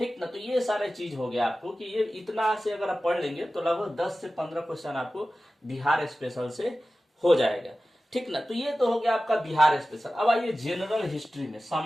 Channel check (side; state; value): both; normal; correlation 0.95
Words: ना। तो ये सारे चीज हो गया आपको कि ये इतना से अगर आप पढ़ लेंगे तो लगभग 10 से 15 क्वेश्चन आपको बिहार स्पेशल से हो जाएगा, ठीक ना। तो ये तो हो गया आपका बिहार स्पेशल। अब आइए जनरल हिस्ट्री में,